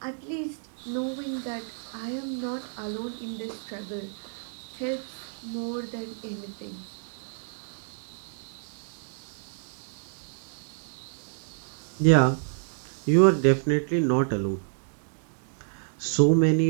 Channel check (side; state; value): left; silent; 59 dB below the other